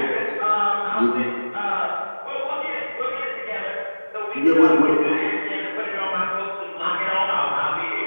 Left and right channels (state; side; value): inverted; both; correlation -1.00